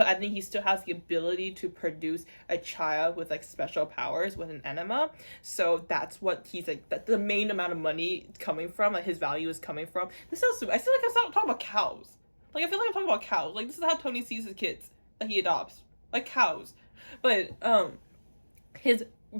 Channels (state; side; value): inverted; both; correlation -1.00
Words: I think he still has the ability to produce a child with like special powers with an enema. So that's what he's like, that the main amount of money coming from, like his value is coming from. This sounds stupid. I feel like I'm talking about cows. Like I feel like I'm talking about cows. Like this is how Tony sees his kids that he adopts. Like cows. But his